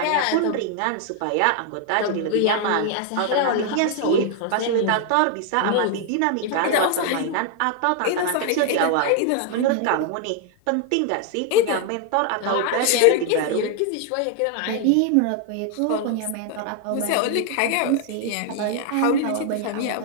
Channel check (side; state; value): both; different; correlation 0.00